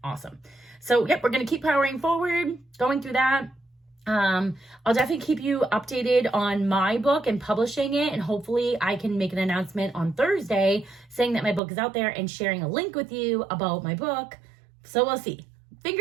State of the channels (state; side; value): drops out; left; at 11.6 s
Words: awesome. So, yep, we're going to keep powering forward, going through that. I'll definitely keep you updated on my book and publishing it, and hopefully I can make an announcement on Thursday saying that my book is out there and sharing a link with you about my book. So we'll see.